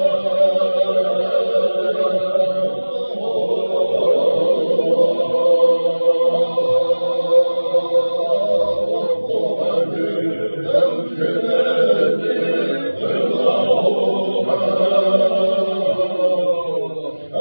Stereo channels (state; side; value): inverted; both; correlation -1.00